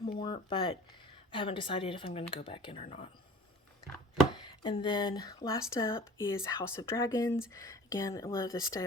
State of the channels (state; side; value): normal; both; correlation 0.43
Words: more, but I haven't decided if I'm going to go back in or not. And then last up is House of Dragons. Again, I love the